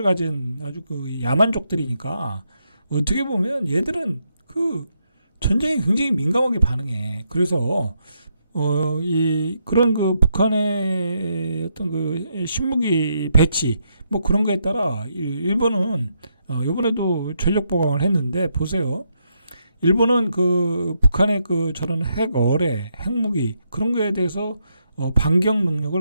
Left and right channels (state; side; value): inverted; both; correlation -0.79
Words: 가진 아주 야만족들이니까 어떻게 보면 얘들은 전쟁에 굉장히 민감하게 반응해. 그래서 그런 북한의 어떤 신무기 배치 뭐 그런 거에 따라 일본은 이번에도 전력 보강을 했는데 보세요. 일본은 북한의 저런 핵어뢰, 핵무기 그런 거에 대해서 반격